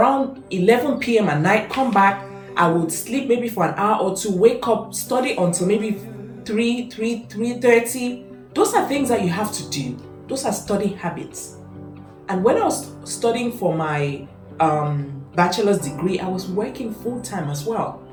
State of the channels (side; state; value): both; identical; correlation 1.00